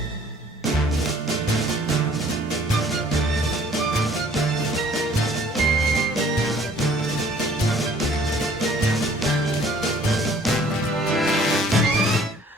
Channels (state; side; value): normal; both; correlation 0.56